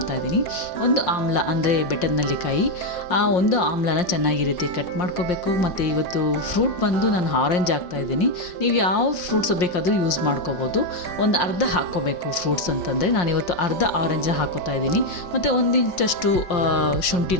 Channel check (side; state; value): right; late; 5.6 ms